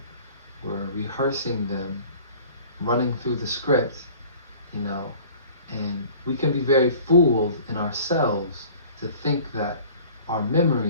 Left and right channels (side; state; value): both; inverted; correlation -0.47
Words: we're rehearsing them, running through the script, you know, and we can be very fooled in ourselves to think that our